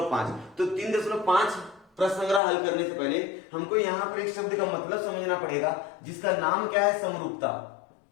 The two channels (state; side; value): drops out; right; at 2.4 s